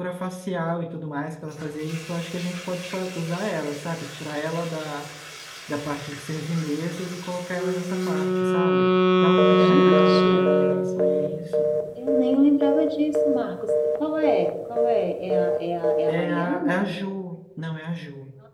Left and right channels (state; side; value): identical; both; correlation 1.00